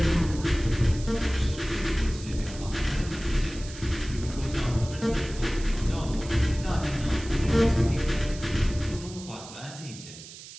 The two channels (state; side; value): noise; right; hiss, 15 dB below the sound